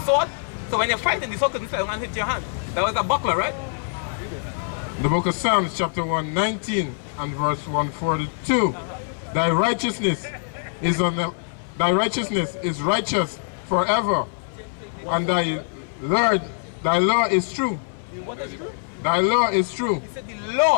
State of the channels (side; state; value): right; silent; digital silence